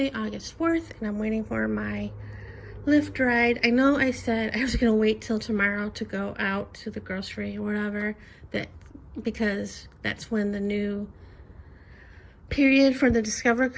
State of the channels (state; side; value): identical; both; correlation 1.00